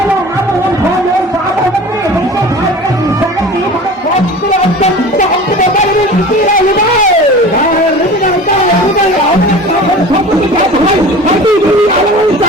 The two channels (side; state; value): both; normal; correlation 0.39